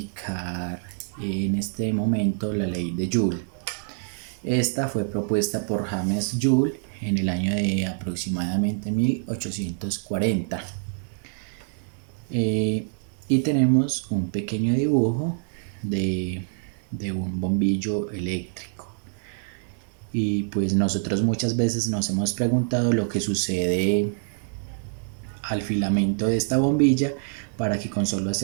en este momento la ley de Joule. Esta fue propuesta por James Joule en el año de aproximadamente 1840. Y tenemos un pequeño dibujo de un bombillo eléctrico. Y pues nosotros muchas veces nos hemos preguntado lo que sucede al filamento de esta bombilla para que con solo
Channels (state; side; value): silent; left; digital silence